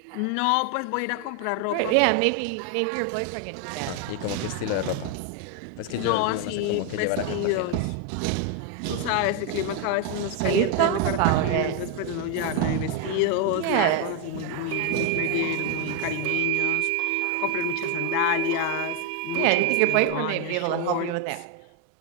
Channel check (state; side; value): different; both; correlation 0.01